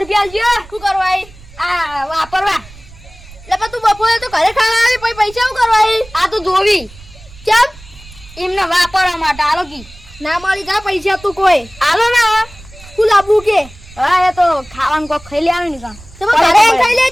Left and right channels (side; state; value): right; noise; rumble, 21 dB below the sound